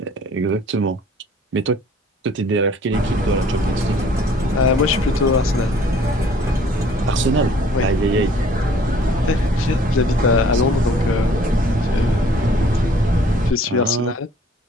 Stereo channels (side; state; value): both; normal; correlation 0.56